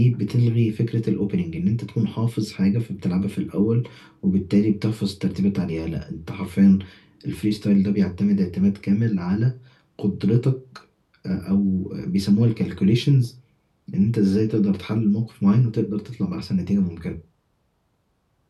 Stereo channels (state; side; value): identical; both; correlation 1.00